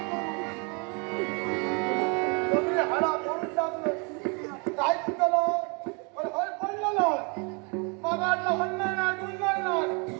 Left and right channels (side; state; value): left; quieter; 33.6 dB